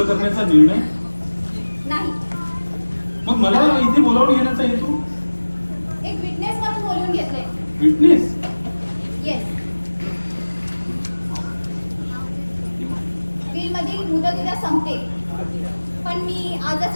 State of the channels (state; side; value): inverted; both; correlation -1.00